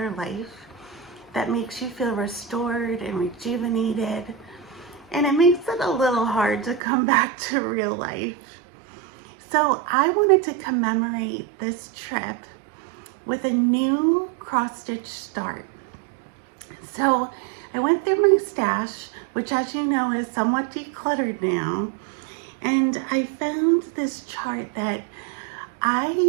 life, that makes you feel restored and rejuvenated, and it makes it a little hard to come back to real life. So I wanted to commemorate this trip with a new cross-stitch start. So I went through my stash, which, as you know, is somewhat decluttered now, and I found this chart that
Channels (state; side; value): drops out; left; at 6.8 s